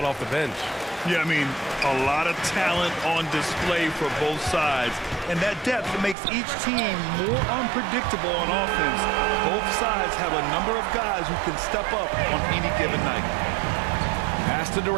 off the bench. Yeah, I mean, a lot of talent on display for both sides. And that depth makes each team more unpredictable on offense. Both sides have a number of guys who can step up on any given night. Pass to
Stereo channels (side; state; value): left; drops out; at 6.2 s